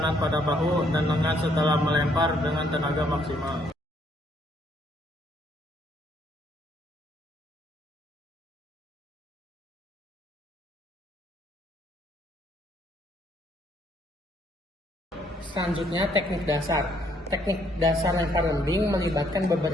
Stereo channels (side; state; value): both; normal; correlation 0.68